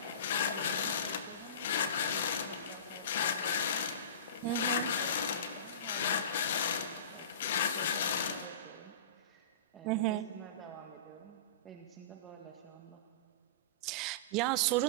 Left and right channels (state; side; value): inverted; both; correlation -0.31